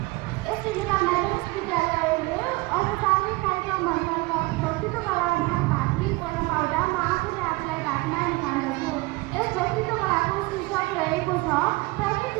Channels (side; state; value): left; quieter; 22.8 dB